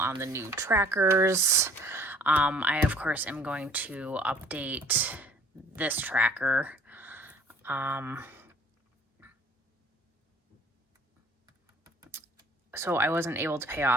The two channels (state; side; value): normal; both; correlation 0.53